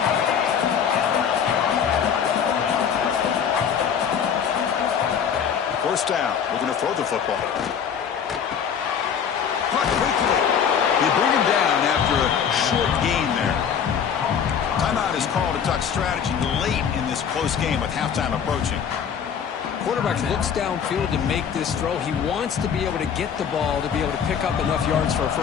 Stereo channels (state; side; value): quieter; right; 7.6 dB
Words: First down, looking to throw the football. Caught quickly. They bring him down after a short gain there. Timeout is called to talk strategy late in this close game with halftime approaching. Quarterback looks downfield to make this throw. He wants to be able to get the ball to be able to pick up enough yards for a